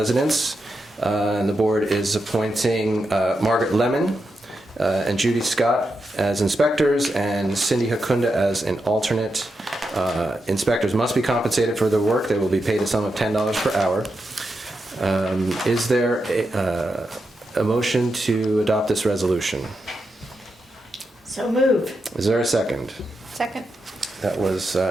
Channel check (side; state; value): both; normal; correlation 0.86